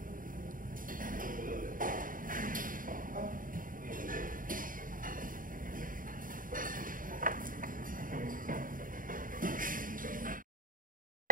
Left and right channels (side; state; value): left; late; 0.40 ms